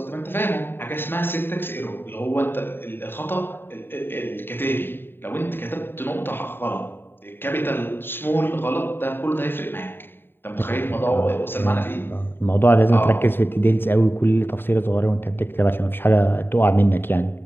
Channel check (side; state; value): right; late; 0.10 ms